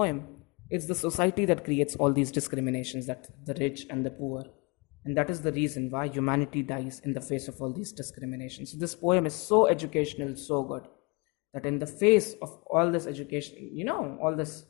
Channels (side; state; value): right; quieter; 30.2 dB